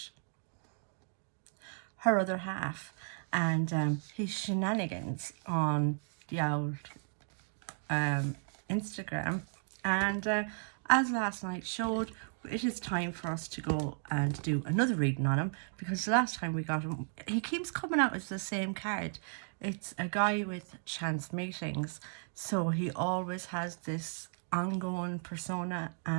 her other half and his shenanigans on the old Instagram. And as last night showed, it is time for us to go and do another reading on him, because the last time we got him, he keeps coming out as the same card. It's a guy with chance meetings, so he always has this ongoing persona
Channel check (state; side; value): silent; left; 55 dB below the other